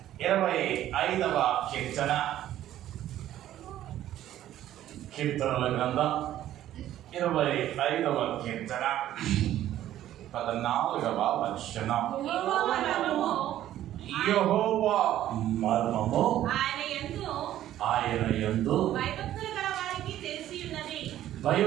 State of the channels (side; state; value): left; quieter; 12.7 dB